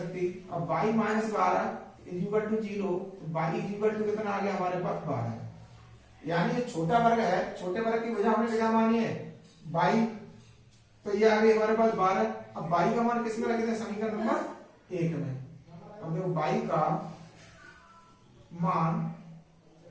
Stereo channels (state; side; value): identical; both; correlation 1.00